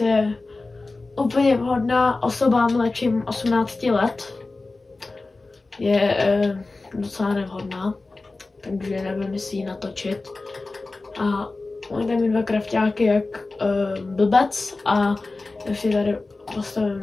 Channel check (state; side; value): quieter; right; 3.4 dB